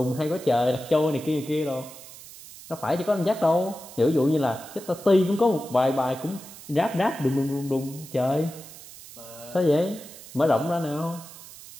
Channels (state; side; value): noise; right; hiss, 17 dB below the sound